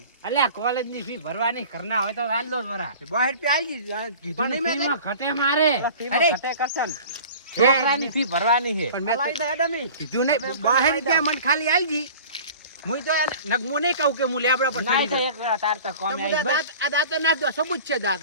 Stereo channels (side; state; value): both; inverted; correlation -0.42